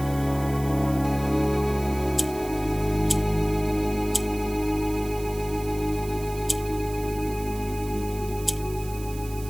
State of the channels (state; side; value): noise; right; hiss, 16 dB below the sound